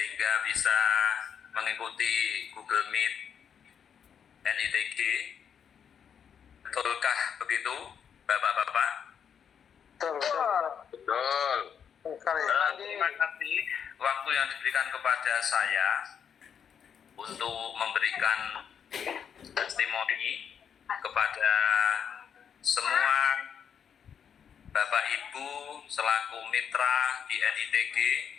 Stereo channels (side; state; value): right; quieter; 7.7 dB